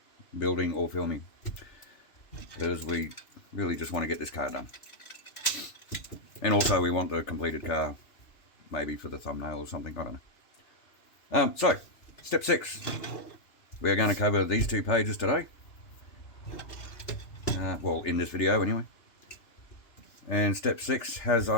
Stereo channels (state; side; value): late; right; 3.4 ms